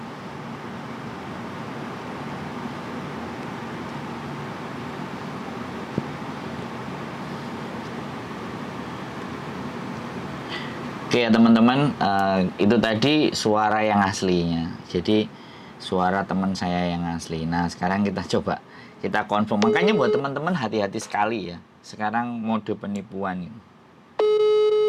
Oke, Oke ya teman-teman, itu tadi suara yang aslinya. Jadi suara teman saya yang asli. Nah sekarang kita coba kita confirm. Makanya buat teman-teman hati-hati sekali ya. Sekarang mode penipuan ini.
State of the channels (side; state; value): both; identical; correlation 1.00